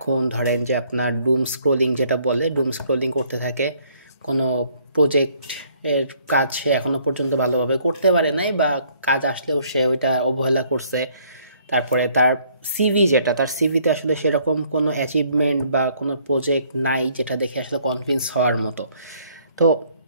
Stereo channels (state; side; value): inverted; both; correlation -0.63